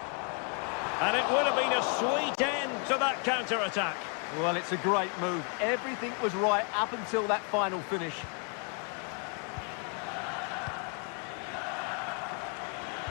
And it would have been a sweet end to that counter-attack. Well, it's a great move. Everything was right up until that final finish.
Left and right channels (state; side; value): quieter; right; 39.8 dB